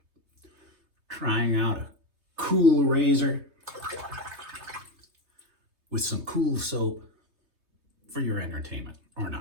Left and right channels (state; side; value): late; left; 3.3 ms